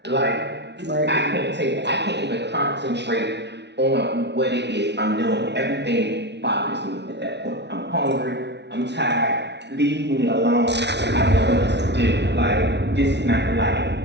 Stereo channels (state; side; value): late; left; 0.50 ms